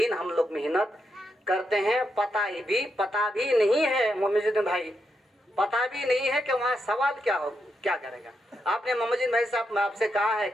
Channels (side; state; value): both; normal; correlation 0.83